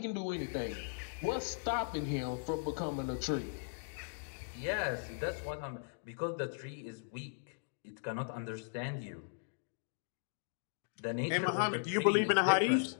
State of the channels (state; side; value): silent; right; digital silence